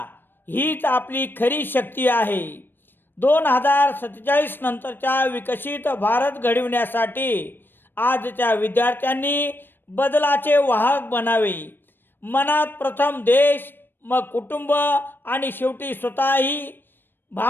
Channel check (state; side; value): late; right; 0.096 ms